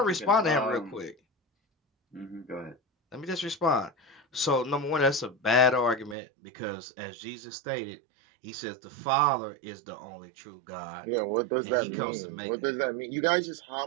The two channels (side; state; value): left; drops out; at 6.2 s